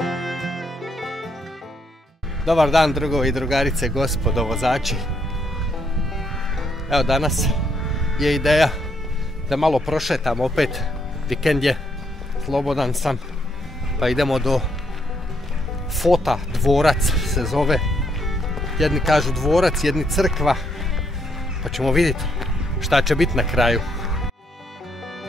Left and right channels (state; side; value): normal; both; correlation 0.74